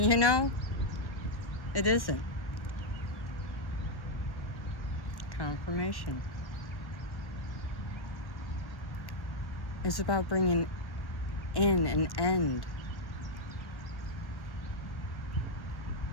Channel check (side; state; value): right; late; 1.1 ms